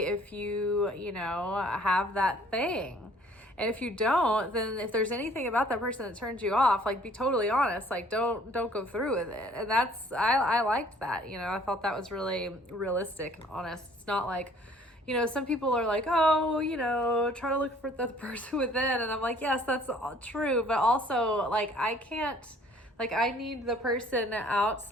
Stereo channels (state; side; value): normal; both; correlation 0.57